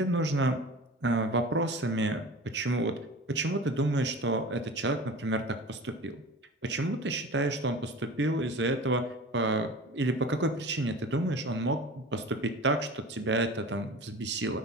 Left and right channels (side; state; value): both; normal; correlation 0.36